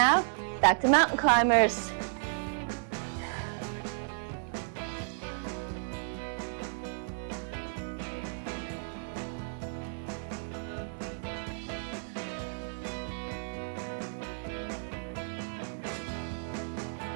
back to mountain climbers.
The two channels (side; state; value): left; silent; 56 dB below the other